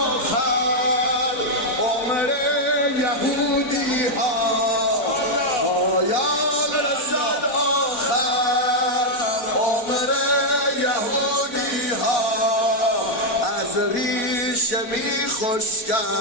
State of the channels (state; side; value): late; right; 4.5 ms